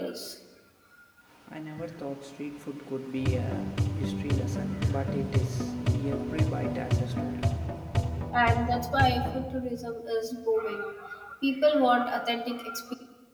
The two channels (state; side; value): identical; both; correlation 1.00